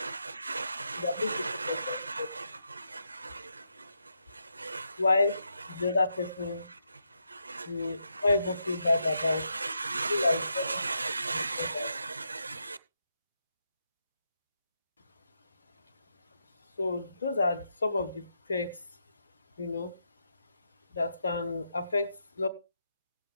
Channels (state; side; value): inverted; both; correlation -0.82